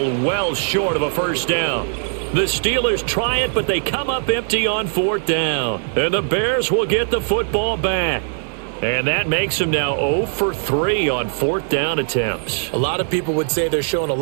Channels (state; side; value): silent; left; 66 dB below the other